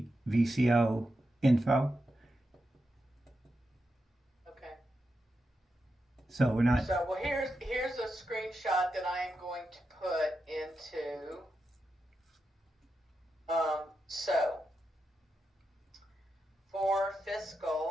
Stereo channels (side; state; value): both; normal; correlation 0.87